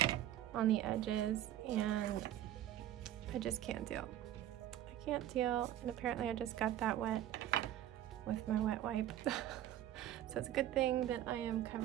on the edges and I just can't deal. Can't deal, and apparently I just got that wet with my wet wipe. So it's a good thing that I am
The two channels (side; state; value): left; quieter; 12.4 dB